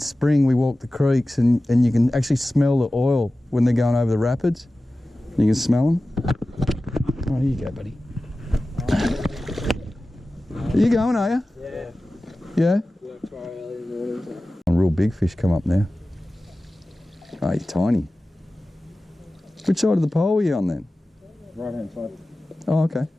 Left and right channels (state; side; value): normal; both; correlation 0.96